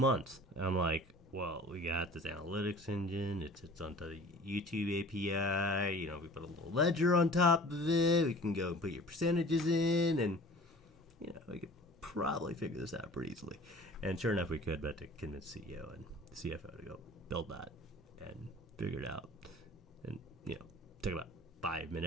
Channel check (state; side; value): normal; both; correlation 0.45